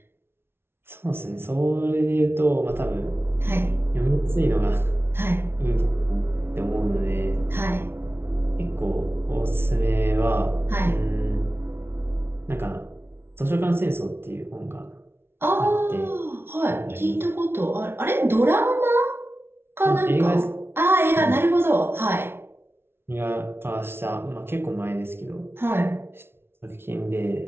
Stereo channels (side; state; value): left; late; 0.12 ms